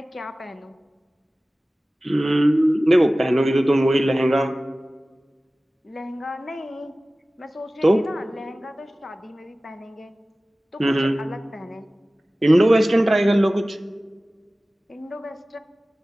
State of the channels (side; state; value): both; normal; correlation 0.97